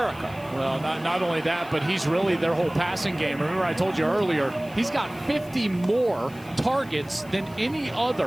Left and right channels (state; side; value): noise; left; hiss, 23 dB below the sound